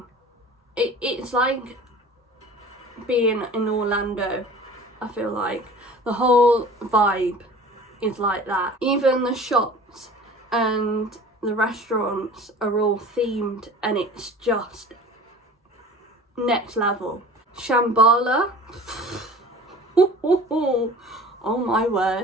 it's like being in Orlando. I feel like the whole vibe is like that. Even the shops and the restaurants are all themed, and it's just next level. Shambhala, oh my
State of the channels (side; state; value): both; normal; correlation 0.43